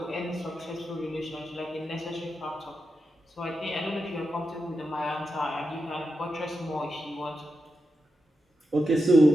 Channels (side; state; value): both; normal; correlation 0.88